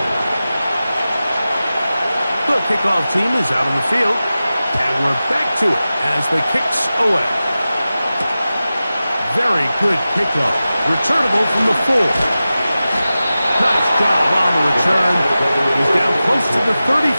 The kickoff team is out on the field. And we're back to it as the kick's away. Very good kickoff. Returnable from the 4. Nice job on the return. He's down close to the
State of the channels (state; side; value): inverted; both; correlation -0.95